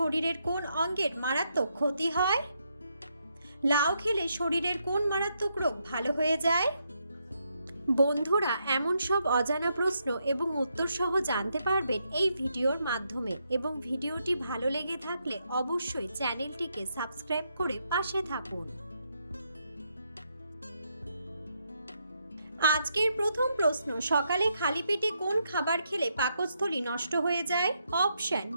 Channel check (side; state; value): both; inverted; correlation -0.79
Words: কোন অঙ্গের মারাত্মক ক্ষতি হয়? লাউ খেলে শরীরের কোন মারাত্মক রোগ ভালো হয়ে যায়? বন্ধুরা, এমন সব অজানা প্রশ্ন এবং উত্তর সহ জানতে পারবেন এই ভিডিওর মাধ্যমে, এবং ভিডিওটি ভালো লেগে থাকলে অবশ্যই চ্যানেলটিকে সাবস্ক্রাইব করে পাশে থাকুন। আজকের প্রথম প্রশ্ন, সকালে খালি পেটে কোন খাবার খেলে পাকস্থলী নষ্ট হয়ে যায়? অপশন: